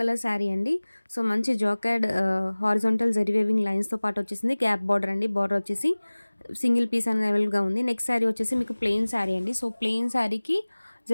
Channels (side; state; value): both; inverted; correlation -1.00